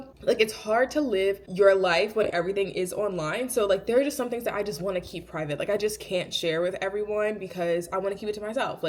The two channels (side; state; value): both; identical; correlation 1.00